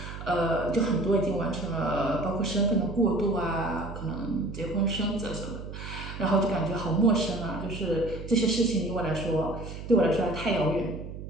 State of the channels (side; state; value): right; noise; hum, 10 dB below the sound